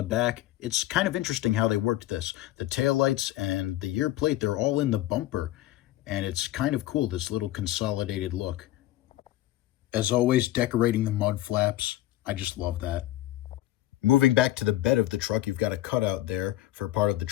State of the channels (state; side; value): quieter; right; 15.2 dB